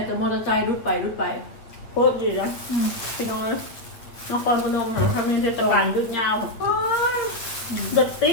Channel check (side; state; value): right; late; 8.4 ms